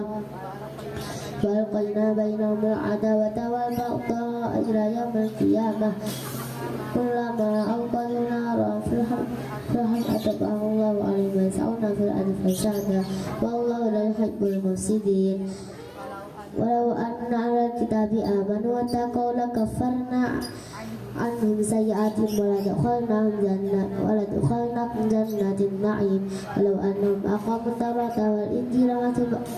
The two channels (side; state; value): both; identical; correlation 1.00